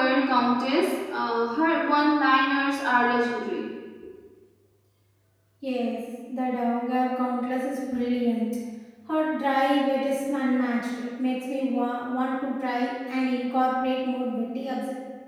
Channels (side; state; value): both; identical; correlation 1.00